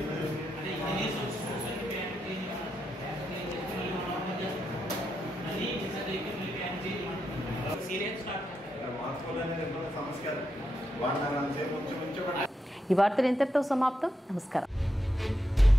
ఈ వార్తలు ఇంతటితో సమాప్తం. నమస్కారం.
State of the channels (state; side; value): normal; both; correlation 0.84